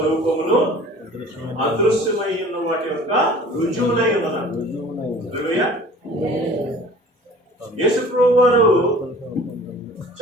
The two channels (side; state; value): both; normal; correlation 0.46